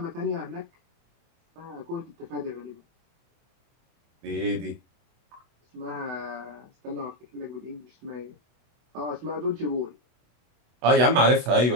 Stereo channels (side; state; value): left; late; 24 ms